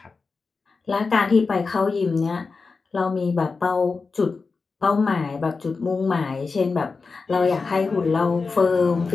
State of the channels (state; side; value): quieter; right; 4.4 dB